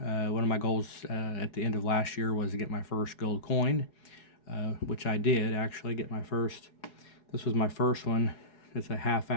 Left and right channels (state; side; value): late; right; 4.8 ms